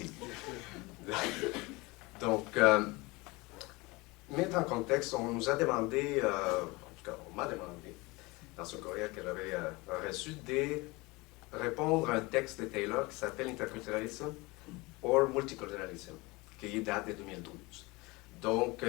Donc, mettre en contexte, on nous a demandé, en tout cas, on m'a demandé, dans ce courriel que j'avais reçu, de répondre à un texte de Taylor qui s'appelle Interculturalism or Multiculturalism, qui date de 2012. Donc,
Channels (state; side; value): quieter; right; 24.0 dB